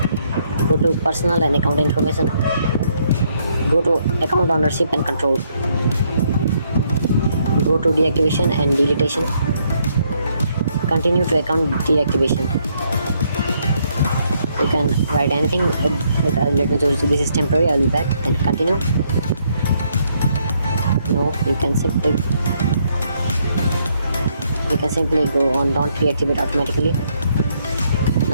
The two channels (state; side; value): inverted; both; correlation -0.72